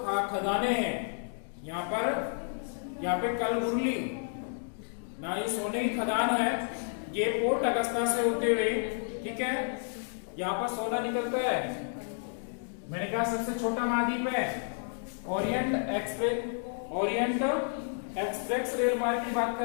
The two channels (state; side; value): silent; right; digital silence